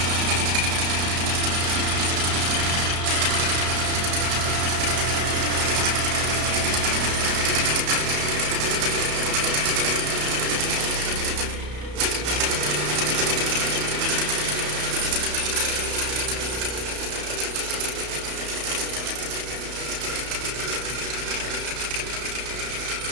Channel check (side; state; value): left; late; 33 ms